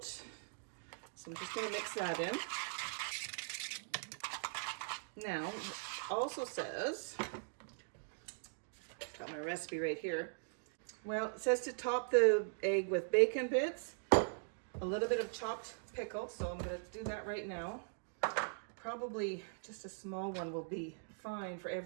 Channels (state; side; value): silent; left; digital silence